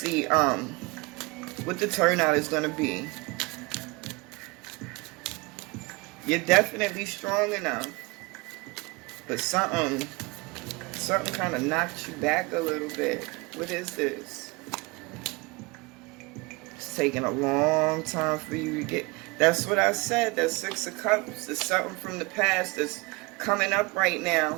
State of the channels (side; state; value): left; quieter; 25.6 dB